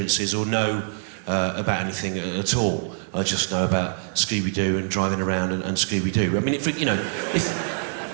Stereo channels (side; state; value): left; silent; digital silence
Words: or know about anything at all. I just know about Scooby-Doo and driving around and Scooby-Doo. I mean, if